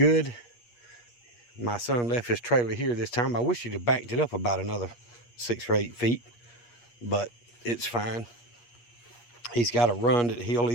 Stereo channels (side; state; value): right; late; 8.4 ms